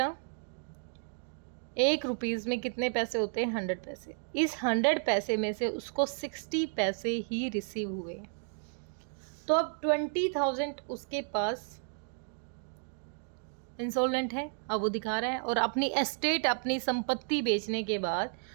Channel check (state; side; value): silent; left; 56 dB below the other